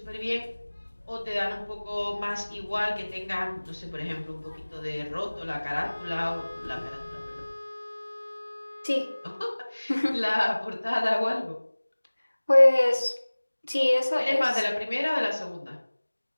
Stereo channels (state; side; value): inverted; both; correlation -1.00